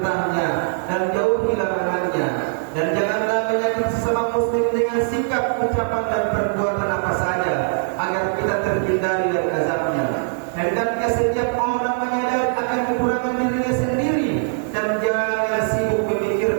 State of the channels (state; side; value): silent; left; digital silence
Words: dan jauhi larangannya. Dan janganlah menyakiti sesama muslim dengan sikap, ucapan dan perbuatan apa saja, agar kita terhindari dari azabnya. Hendaknya setiap orang menyadari akan kekurangan dirinya sendiri dan jangan sibuk